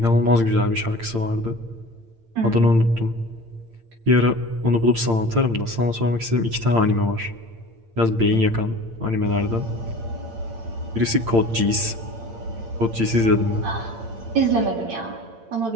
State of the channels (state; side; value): late; left; 8.8 ms